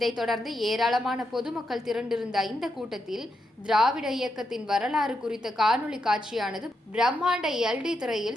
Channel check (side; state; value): both; normal; correlation 0.84